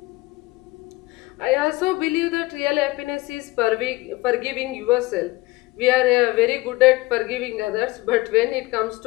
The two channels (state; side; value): quieter; right; 20.5 dB